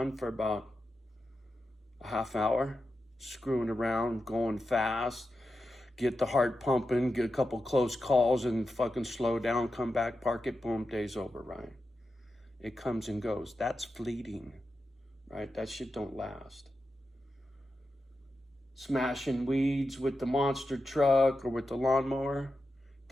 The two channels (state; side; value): normal; both; correlation 0.90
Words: for about a half hour, screwing around, going fast, get the heart pumping, get a couple close calls and fucking slow down, come back, park it, boom, day's over, right? It comes and goes. That's fleeting, right? That shit don't last. Smashing weeds with the monster truck or with the lawnmower,